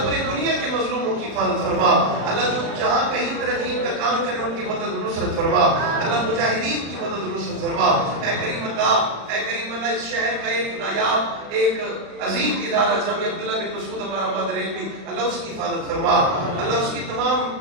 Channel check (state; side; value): late; left; 36 ms